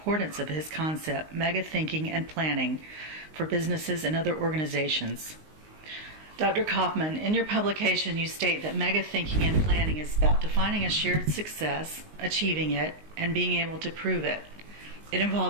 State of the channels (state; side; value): late; left; 19 ms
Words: of his concept, mega thinking and planning, for businesses and other organizations. Dr. Kaufman, in your publication you state that mega thinking and planning is about defining a shared success, achieving it, and being able to prove it. It